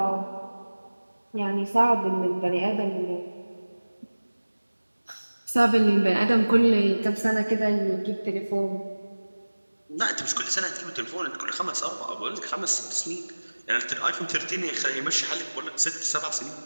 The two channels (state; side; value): inverted; both; correlation -1.00